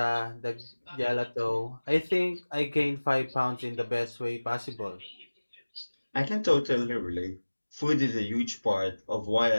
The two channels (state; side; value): inverted; both; correlation -1.00